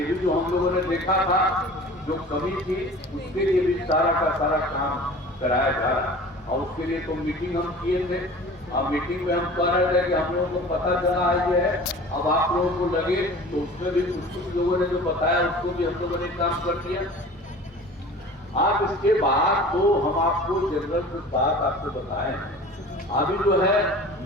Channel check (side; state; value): both; normal; correlation 0.41